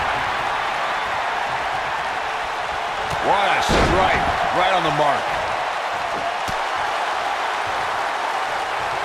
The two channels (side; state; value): both; identical; correlation 1.00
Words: What a strike. Right on the mark.